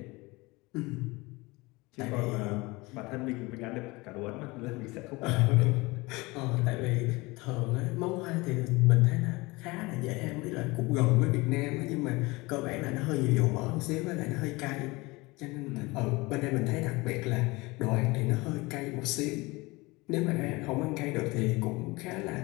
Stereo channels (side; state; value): right; quieter; 23.3 dB